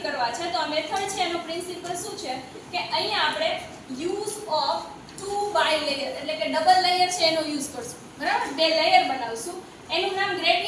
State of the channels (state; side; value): identical; both; correlation 1.00